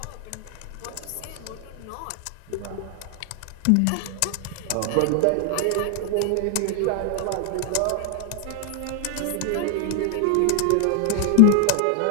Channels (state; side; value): different; both; correlation 0.00